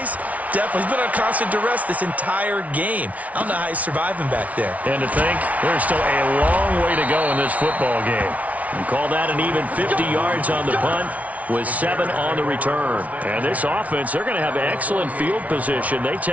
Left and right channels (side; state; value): left; late; 0.069 ms